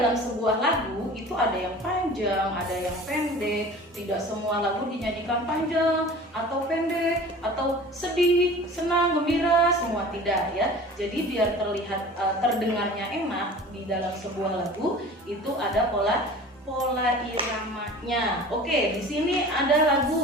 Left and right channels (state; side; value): normal; both; correlation 0.41